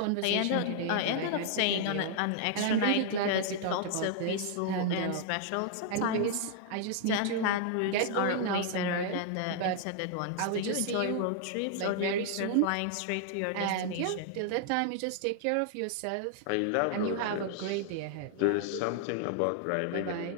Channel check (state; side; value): different; both; correlation -0.01